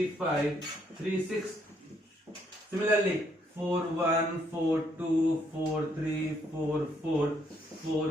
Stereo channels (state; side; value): normal; both; correlation 0.71